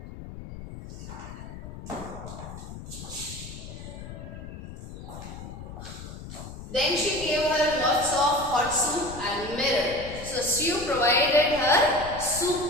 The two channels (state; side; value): noise; left; rumble, 12 dB below the sound